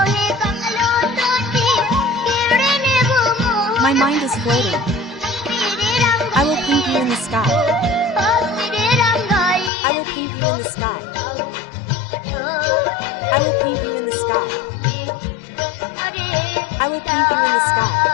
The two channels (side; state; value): right; drops out; at 9.7 s